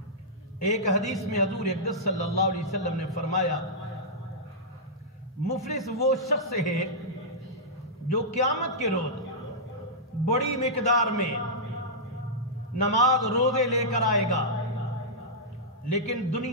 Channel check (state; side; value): normal; both; correlation -0.11